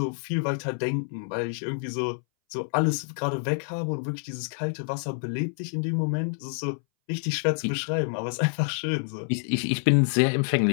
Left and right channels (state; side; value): silent; right; 60 dB below the other